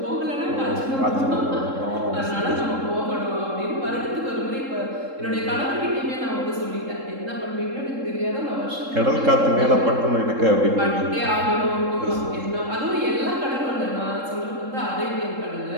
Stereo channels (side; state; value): left; late; 3.7 ms